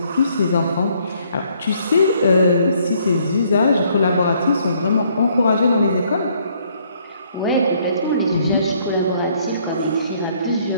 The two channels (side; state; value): both; inverted; correlation -0.66